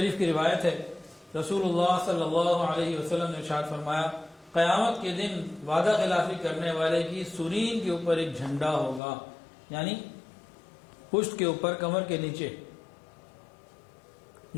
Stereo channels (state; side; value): drops out; right; at 9.0 s